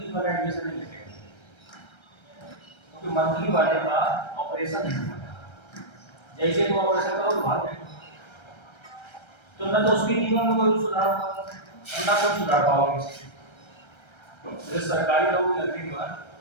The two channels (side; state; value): right; late; 1.3 ms